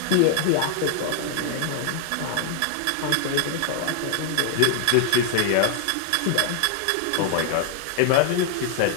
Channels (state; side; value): different; both; correlation 0.00